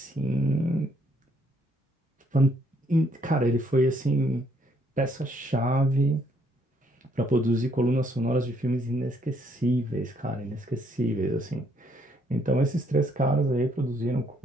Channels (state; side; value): normal; both; correlation 0.69